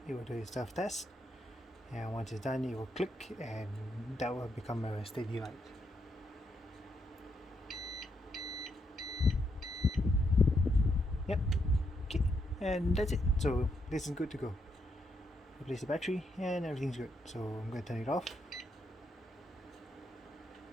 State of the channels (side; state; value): both; normal; correlation 0.79